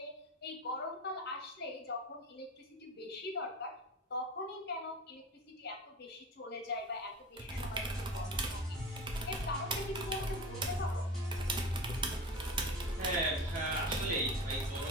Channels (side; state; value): both; normal; correlation 0.32